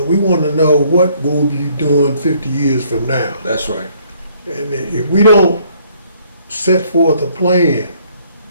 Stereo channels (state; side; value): inverted; both; correlation -0.64